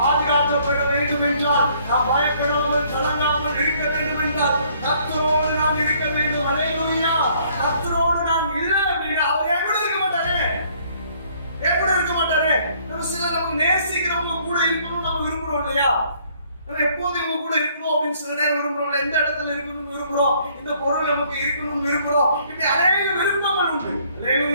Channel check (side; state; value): both; inverted; correlation -0.63